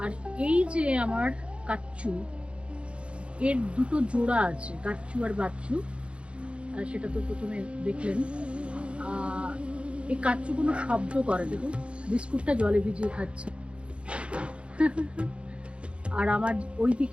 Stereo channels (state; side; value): late; left; 0.059 ms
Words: আর এই যে আমার কাচ্চু, এর দুটো জোড়া আছে, কাচ্চু আর বাচ্চু। সেটা তো প্রথমে দেখলেন। এই কাচ্চু কোনো শব্দ করে, দেখুন বিস্কুটটা জলে ভিজিয়ে খাচ্ছে। আর আমার ওই